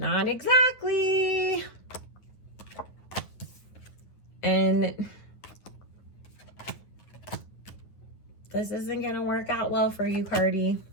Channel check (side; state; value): right; late; 9.3 ms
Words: exactly. And this isn't going to work out well for you, Cardi,